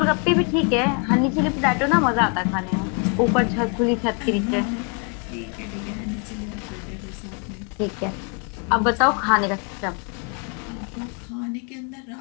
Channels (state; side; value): quieter; right; 36.4 dB